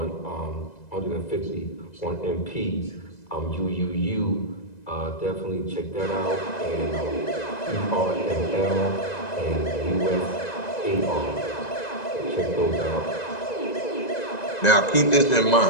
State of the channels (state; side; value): late; right; 1.9 ms